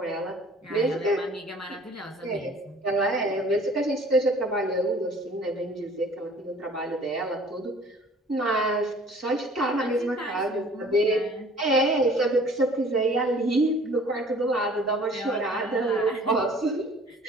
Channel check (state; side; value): normal; both; correlation 0.51